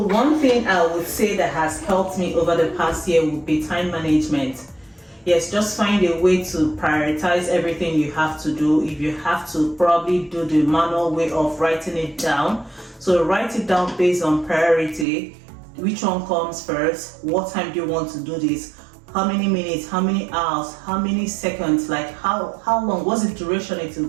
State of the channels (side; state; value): left; drops out; at 15.1 s